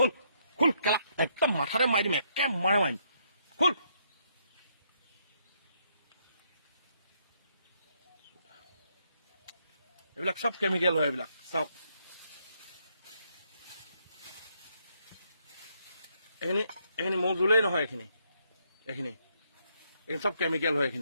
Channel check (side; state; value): both; inverted; correlation -0.73